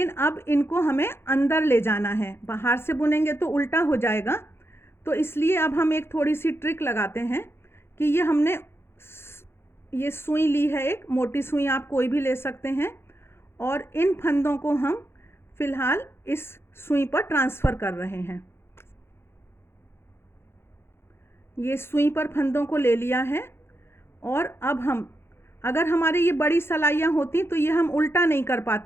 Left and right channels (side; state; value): right; late; 0.12 ms